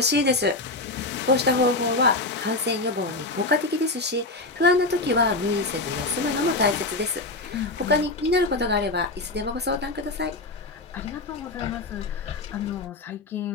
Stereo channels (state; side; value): quieter; right; 3.1 dB